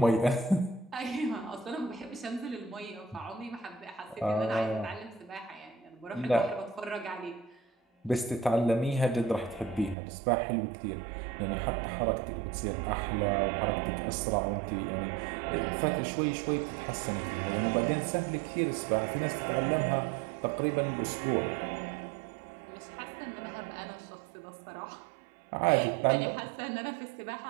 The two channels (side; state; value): left; drops out; at 10.0 s